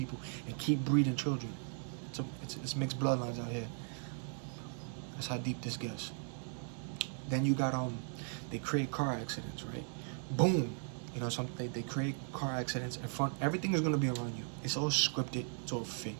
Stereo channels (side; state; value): left; silent; 53 dB below the other